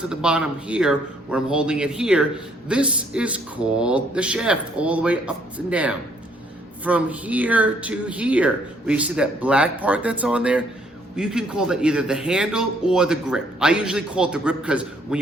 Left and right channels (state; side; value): normal; both; correlation 0.66